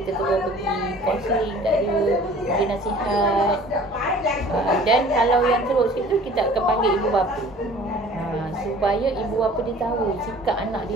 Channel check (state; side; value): normal; both; correlation 0.48